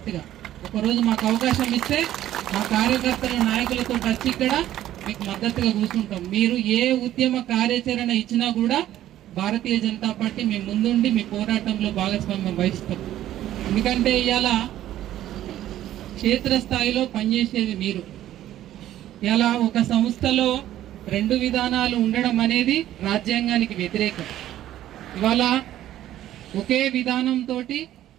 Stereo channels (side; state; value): left; quieter; 12.9 dB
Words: ఒకరోజు మాకు అవకాశం ఇస్తే మా కార్యకర్తల నాయకులతో వచ్చి ఇక్కడ మీకు మద్దతుగా కూర్చుంటాం. మీరు ఏ ఉద్యమ కార్యాచరణ ఇచ్చినా కూడా భారతీయ జనతా పార్టీ మీ ముందుండి మీ పోరాటంలో భాగస్వామ్యం వహిస్తాం. ఎందుకంటే ఇవాళ క్షేత్రస్థాయిలో పనిచేసేది మీరు. ఇలా ఒక సంస్థలో 2 విధానాలు ఉండడం అనేది రాజ్యాంగానికి వ్యతిరేకం. ఇవాళ ఒకే విధానంతో